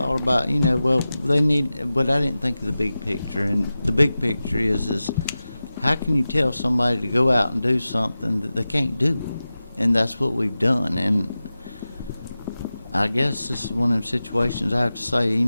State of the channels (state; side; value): inverted; both; correlation -0.94